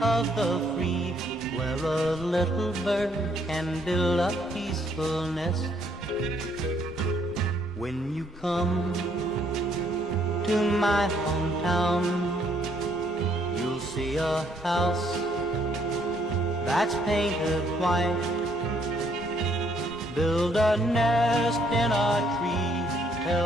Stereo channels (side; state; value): both; normal; correlation 0.68